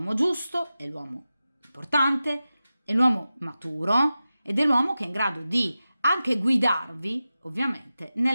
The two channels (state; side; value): inverted; both; correlation -0.94